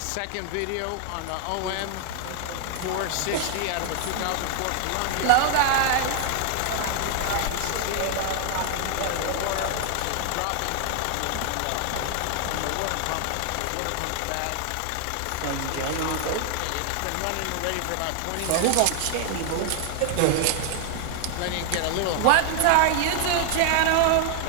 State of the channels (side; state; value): both; different; correlation 0.00